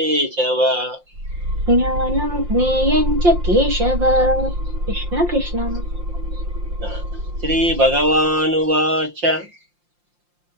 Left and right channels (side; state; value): left; late; 5.7 ms